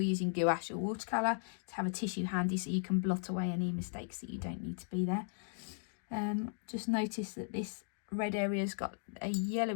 gouache or watercolour, to have a tissue handy so you can blot away any mistakes that you don't need to be there. Just notice that this red area's got a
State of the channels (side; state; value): right; silent; digital silence